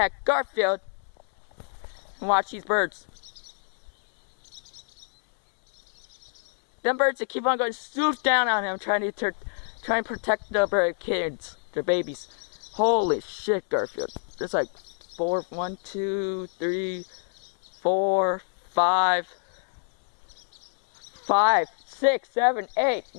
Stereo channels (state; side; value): silent; right; 60 dB below the other